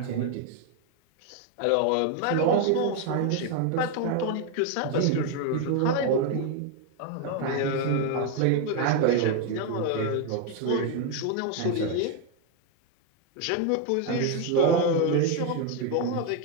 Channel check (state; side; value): different; both; correlation 0.01